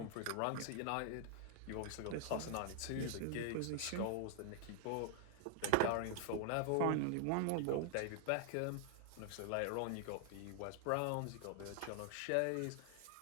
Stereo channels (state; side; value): different; both; correlation 0.00